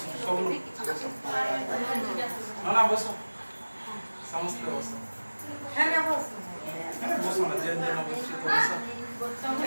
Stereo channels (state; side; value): inverted; both; correlation -1.00